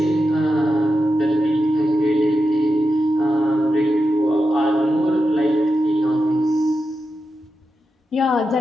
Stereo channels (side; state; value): both; normal; correlation 0.89